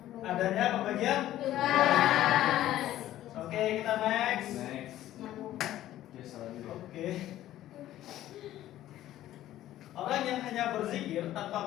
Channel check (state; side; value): quieter; right; 13.6 dB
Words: adanya pembagian. Oke, kita next. Next. Yes, salah juga. Oke. Orang yang hanya berzikir